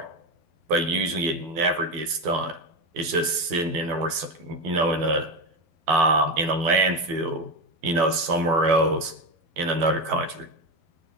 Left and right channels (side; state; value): left; late; 12 ms